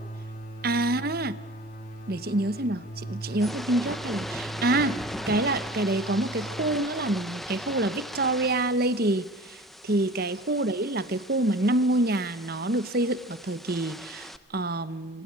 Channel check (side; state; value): both; normal; correlation 0.41